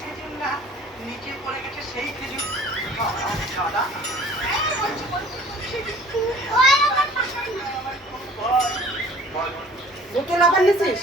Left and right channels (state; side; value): normal; both; correlation 0.50